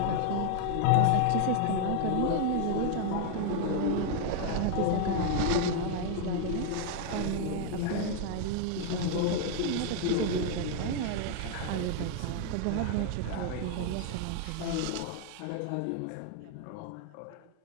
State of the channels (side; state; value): both; different; correlation 0.01